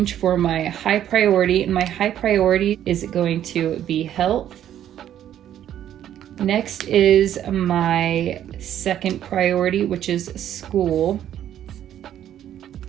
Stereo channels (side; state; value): left; quieter; 11.0 dB